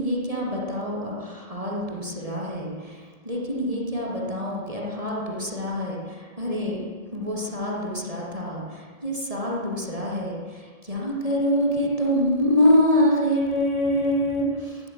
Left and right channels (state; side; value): late; left; 1.7 ms